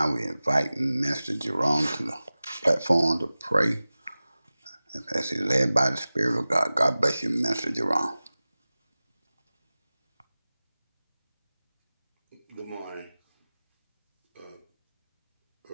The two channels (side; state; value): both; inverted; correlation -0.97